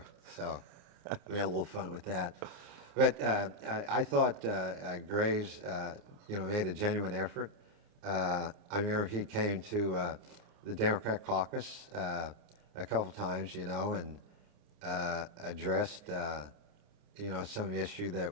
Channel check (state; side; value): late; left; 29 ms